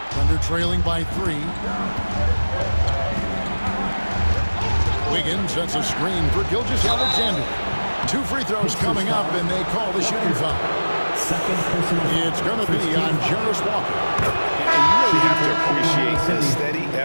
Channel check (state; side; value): inverted; both; correlation -1.00